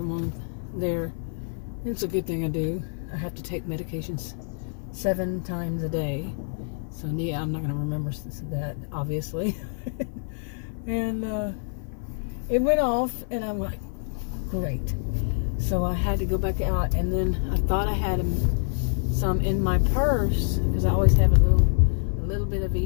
on there. It's a good thing I do. I have to take medications 7 times a day. So yeah, I'm not going to remember that, obviously. And it went off, and I'm like, great. So I had to go back out, and then I thought I had some in my purse, because I always have a little bit of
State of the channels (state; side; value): silent; right; 55 dB below the other